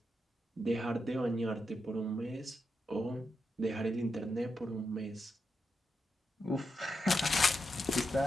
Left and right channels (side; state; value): both; normal; correlation 0.86